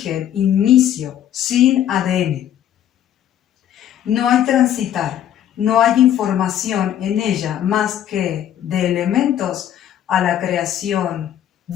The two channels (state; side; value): quieter; right; 10.7 dB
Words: inicio, sin ADN. No hay transitar, no hay información en ella más que de elementos a la creación,